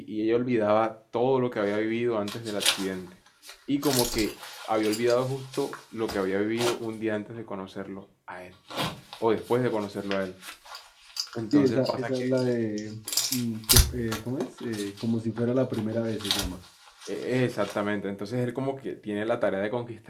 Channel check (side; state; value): both; identical; correlation 1.00